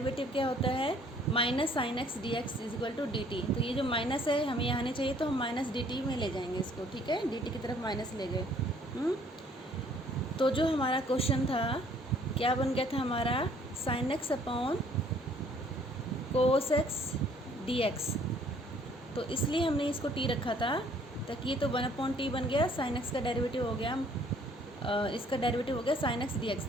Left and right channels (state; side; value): normal; both; correlation 0.60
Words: क्या होता है, minus sine x d x is equal to d t. तो ये जो माइनस है हमें यहाँ नहीं चाहिए, तो हम माइनस डी टी में ले जाएंगे इसको, ठीक है। डी टी की तरफ माइनस ले गए। तो जो हमारा क्वेश्चन था क्या बन गया था हमारा, sign x upon cos x d x. तो इसलिए हमने इसको टी रखा था, ताकि ये तो 1/t बन गया, साइन एक्स का डेरिवेटिव हो गया, इसका डेरिवेटिव हो गया साइन एक्स डी एक्स।